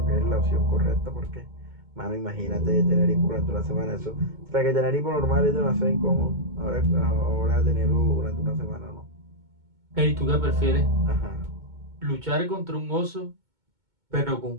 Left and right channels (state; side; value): late; left; 2.2 ms